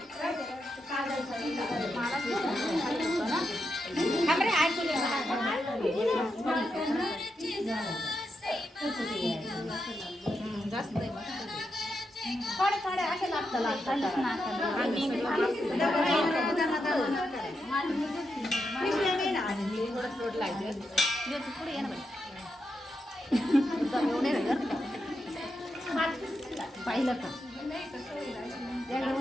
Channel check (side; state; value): both; normal; correlation 0.85